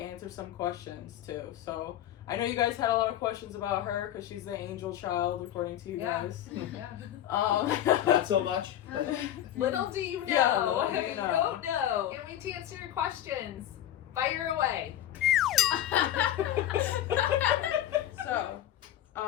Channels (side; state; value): right; quieter; 11.9 dB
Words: some questions too. So I know you guys had a lot of questions about her because she's the angel child, according to you guys. Not so much. Little do you know. Yeah, little do you You know. don't know. Can't wait to answer your questions. Fire away. So,